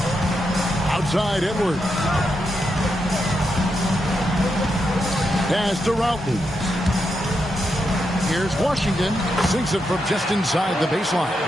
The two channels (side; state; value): both; normal; correlation 0.84